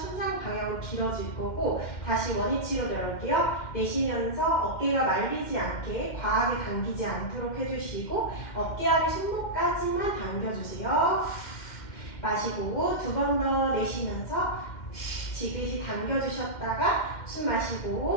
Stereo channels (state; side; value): late; right; 2.1 ms